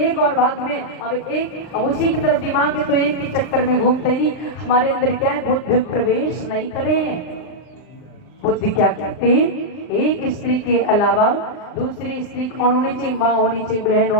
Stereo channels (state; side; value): late; right; 39 ms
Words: और भाग में, अब उसी की तरफ दिमाग है, तो एक के चक्कर में घूमते नहीं। हमारे अंदर क्या है? बुद्ध प्रवेश नहीं करे। बुद्ध क्या कहते हैं? एक स्त्री के अलावा दूसरी स्त्री कौन होनी चाहिए? माँ होनी चाहिए, बहन